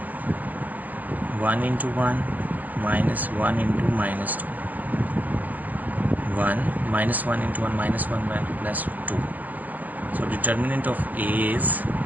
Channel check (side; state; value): left; late; 0.082 ms